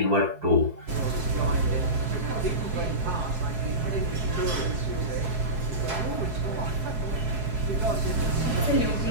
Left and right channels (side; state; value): left; late; 4.7 ms